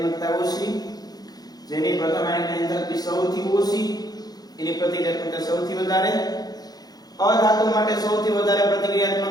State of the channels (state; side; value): late; right; 0.19 ms